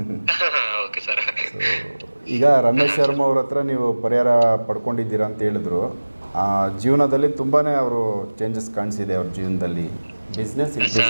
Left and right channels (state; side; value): inverted; both; correlation -1.00